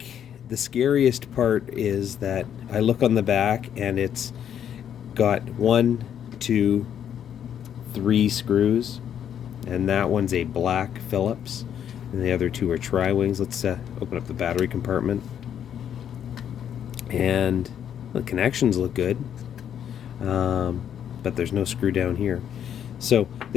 the scariest part is that I look on the back and it's got 1, 2, 3 screws, and that one's a black Phillips, and the other 2 are tri-wings. Let's open up the battery compartment, and the connections look good, but there's no screw down here. So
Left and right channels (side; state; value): right; quieter; 9.3 dB